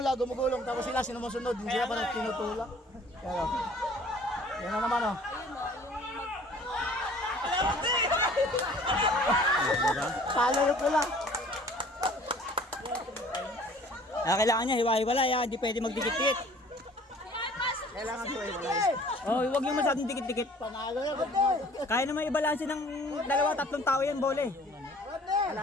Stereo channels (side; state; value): both; normal; correlation 0.51